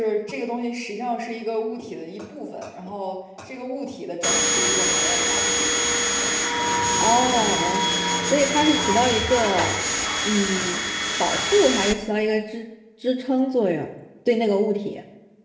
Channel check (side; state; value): both; identical; correlation 1.00